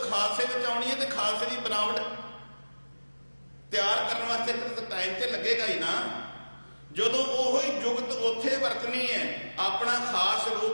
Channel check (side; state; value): both; inverted; correlation -1.00